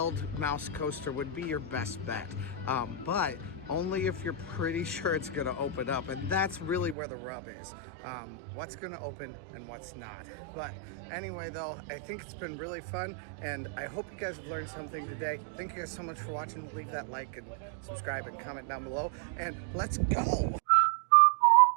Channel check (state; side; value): drops out; left; at 7.0 s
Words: Mouse coaster would be your best bet, but only if you're pretty sure it's gonna open up, and that's really where the rub is. What's gonna open and what's not. But anyway though, I think it's been really fun, and I hope you guys have learned something today. Thank you guys so much for watching. Leave that like and subscribe and comment down below, and let's go.